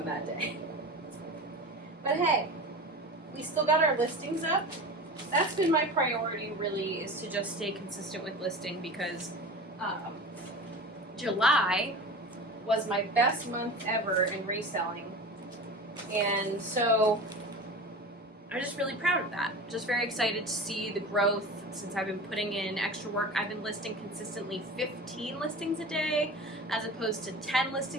that day. But hey, we still got our listings up. That's been my priority, really, is to just stay consistent with listing, because July was my best month ever in reselling. And so I'm just really proud of that. Just very excited to see the growth since I've been putting in extra work. I've been listing consistently 15 listings a day as opposed to 10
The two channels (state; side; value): normal; both; correlation 0.32